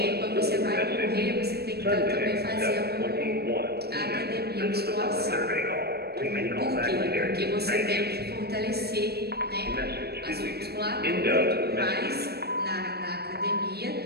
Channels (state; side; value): late; left; 0.47 ms